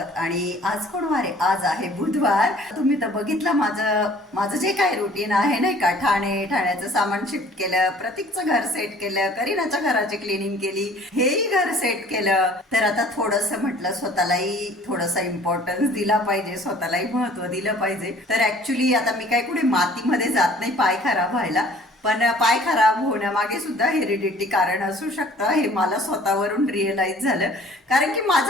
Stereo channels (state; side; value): normal; both; correlation 0.52